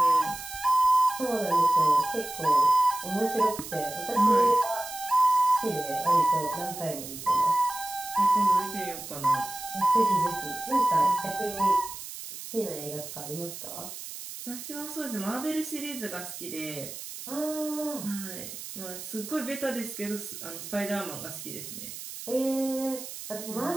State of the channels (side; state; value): right; noise; hiss, 11 dB below the sound